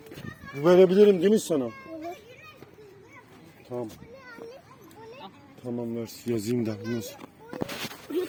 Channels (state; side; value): identical; both; correlation 1.00